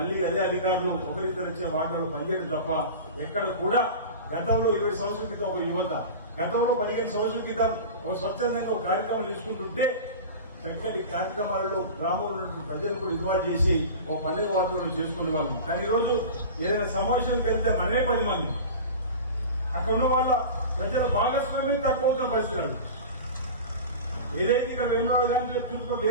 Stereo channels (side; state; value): both; inverted; correlation -0.32